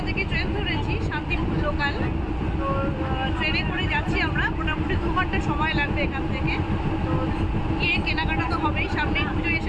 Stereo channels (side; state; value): both; identical; correlation 1.00